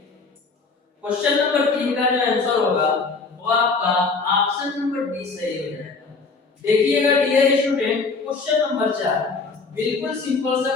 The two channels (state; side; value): quieter; right; 4.3 dB